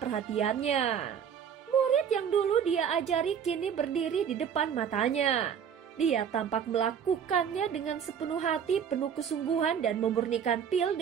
Murid yang dulu dia ajari kini berdiri di depan matanya. Dia tampak melakukannya dengan sepenuh hati, penuh kesungguhan dan memurnikan pil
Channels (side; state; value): left; quieter; 7.9 dB